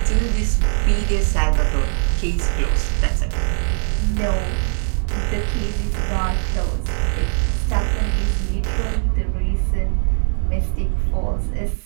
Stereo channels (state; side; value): silent; left; digital silence